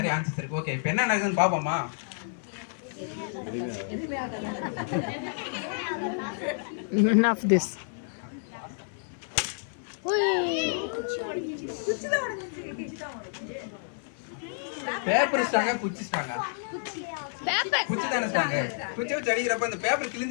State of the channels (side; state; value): right; silent; 58 dB below the other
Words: ஆன்சர்ஸ் இருக்கு. ஓகே, இப்போ என்ன நடக்குதுன்னு பாப்போமா? None of this. பேப்பர் ஸ்ட்ராங்கா, குச்சி ஸ்ட்ராங்கா? குச்சி தானே ஸ்ட்ராங்க. குச்சி வச்சு அடிக்கிறப்ப இந்த பேப்பர்